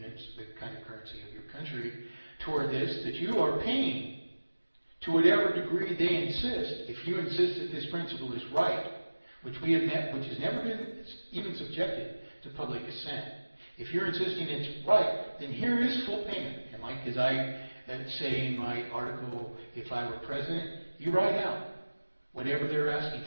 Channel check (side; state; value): both; inverted; correlation -1.00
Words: the kind of currency of your country toward this, that you are paying to whatever degree they insist. If you insist that this principle is right, which has never been even subjected to public assent, if you're insisting it's right, then here is full payment. And like as I say in my article, if I were president, you write out whatever they're asking